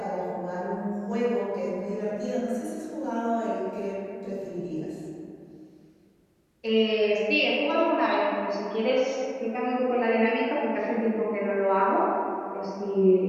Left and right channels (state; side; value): identical; both; correlation 1.00